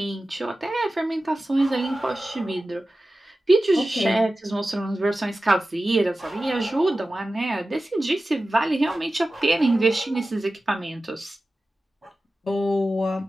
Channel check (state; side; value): normal; both; correlation 0.95